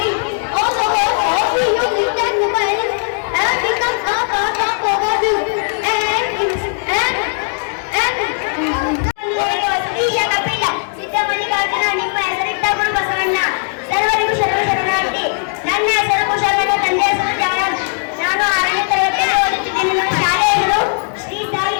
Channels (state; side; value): silent; right; 59 dB below the other